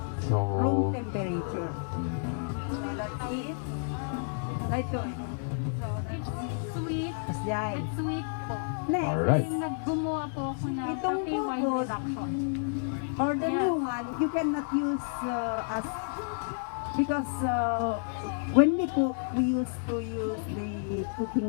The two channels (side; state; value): right; silent; digital silence